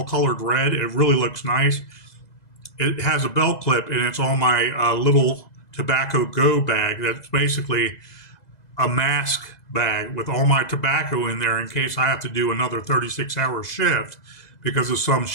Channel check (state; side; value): late; right; 2.0 ms